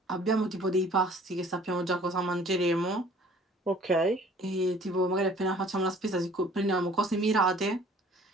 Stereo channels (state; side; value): normal; both; correlation 0.52